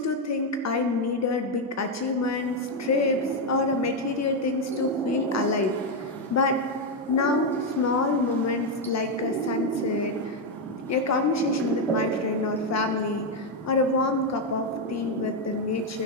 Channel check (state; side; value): normal; both; correlation 0.04